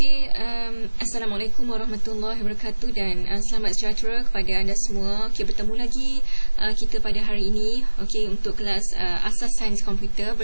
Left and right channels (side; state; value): both; inverted; correlation -1.00